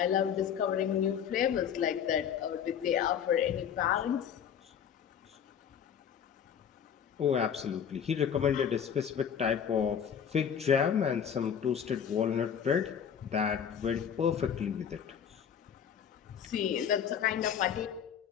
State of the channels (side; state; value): right; quieter; 8.2 dB